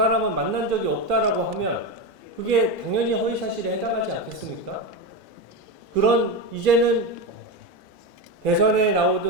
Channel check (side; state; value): both; normal; correlation 0.16